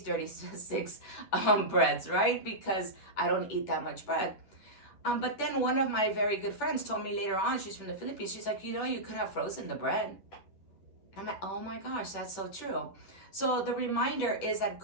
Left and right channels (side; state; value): right; late; 10 ms